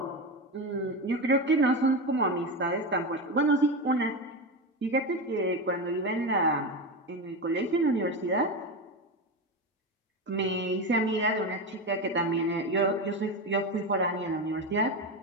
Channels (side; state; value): both; normal; correlation 0.18